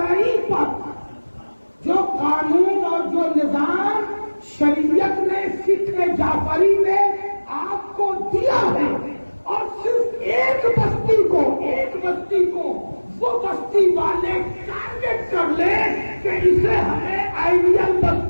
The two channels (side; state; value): both; inverted; correlation -1.00